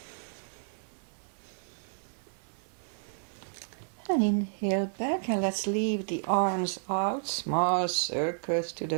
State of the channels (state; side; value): silent; left; digital silence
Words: And inhale back, and let's leave the arms out, small circles to